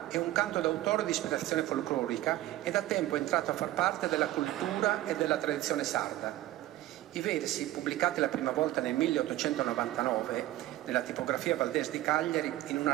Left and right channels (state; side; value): quieter; left; 15.4 dB